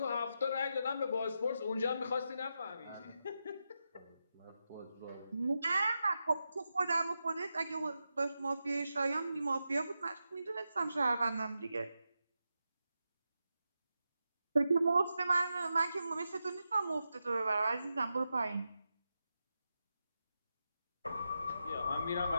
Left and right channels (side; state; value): both; inverted; correlation -0.88